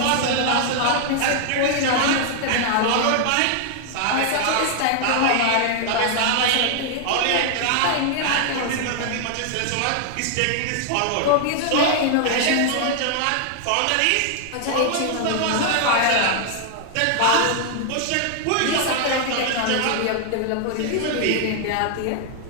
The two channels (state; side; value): different; both; correlation 0.00